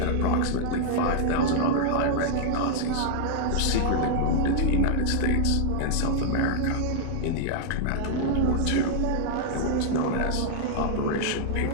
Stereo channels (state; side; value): different; both; correlation -0.01